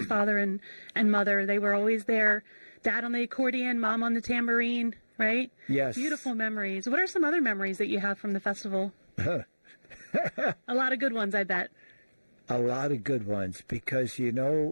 father and mother, they were always there. Dad on the accordion, Mom on the tambourine, right? Yes. Beautiful memories. What are some other memories that you have from the festival? A lot of good ones, I bet. A lot of good ones, because, you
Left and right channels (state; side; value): inverted; both; correlation -1.00